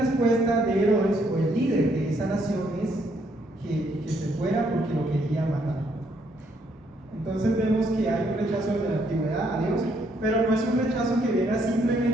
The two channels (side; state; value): both; normal; correlation 0.71